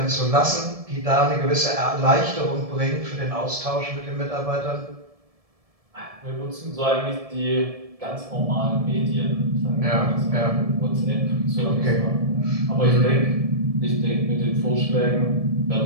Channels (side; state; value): left; late; 1.7 ms